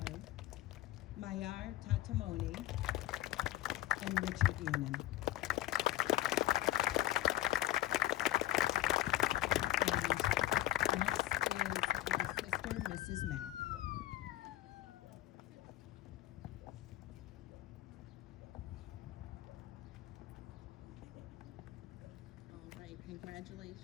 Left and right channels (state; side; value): quieter; right; 15.2 dB